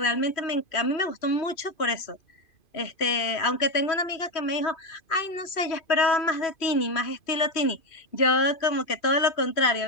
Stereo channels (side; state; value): right; late; 2.5 ms